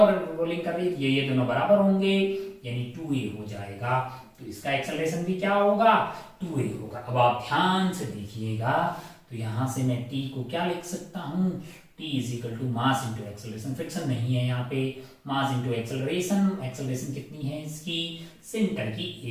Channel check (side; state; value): both; identical; correlation 1.00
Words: रोलिंग कर रही है, ये दोनों बराबर होंगे यानी 2a हो जाएगा। तो इसका एक्सेलरेशन भी क्या होगा 2a होगा। अब आप ध्यान से देखिएगा तो यहां से मैं t को क्या लिख सकता हूं, t is equal to mass into acceleration. Friction नहीं है यहाँ पे, मास इंटू एक्सेलरेशन। एक्सेलरेशन कितनी है इसकी, सेंटर की